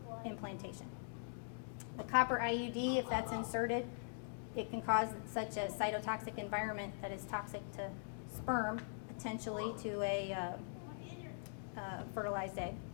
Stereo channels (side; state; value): right; silent; digital silence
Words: implantation. The copper IUD, if that's inserted, it can cause such a cytotoxic environment that is toxic to sperm, potentially to a fertilized egg.